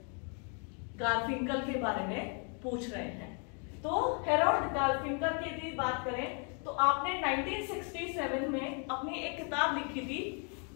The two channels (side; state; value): right; quieter; 39.9 dB